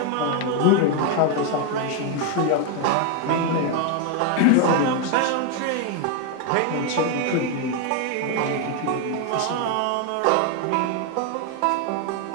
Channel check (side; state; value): both; different; correlation 0.01